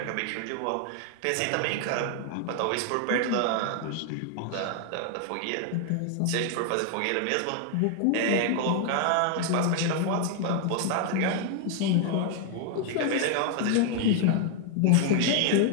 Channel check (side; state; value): both; different; correlation 0.00